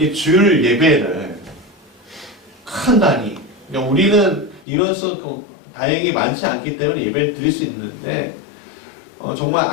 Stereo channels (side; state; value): right; drops out; at 4.7 s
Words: 주일 예배를 큰 단위, 그러니까 우리는 이런 수 다행히 많지 않기 때문에 예배를 드릴 수 있는데 정말